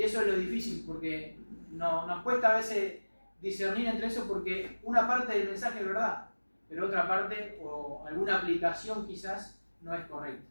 eso es lo difícil, porque nos cuesta a veces discernir entre eso, porque una parte del mensaje es verdad, pero otra parte o alguna aplicación quizás no es correcta.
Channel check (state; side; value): inverted; both; correlation -1.00